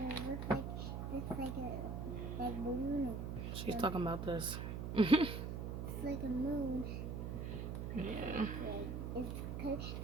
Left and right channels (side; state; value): right; noise; hum, 4 dB below the sound